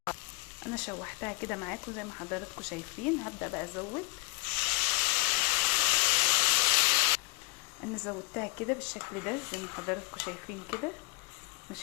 انا شوحتها كده معاكم زي ما حضراتكم شايفين. هبدا بقى ازود. انا زودتها كده بالشكل ده زي ما حضراتكم شايفين كده.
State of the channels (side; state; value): right; quieter; 26.1 dB